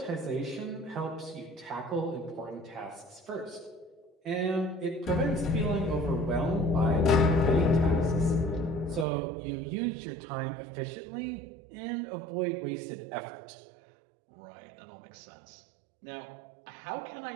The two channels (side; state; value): left; drops out; at 9.1 s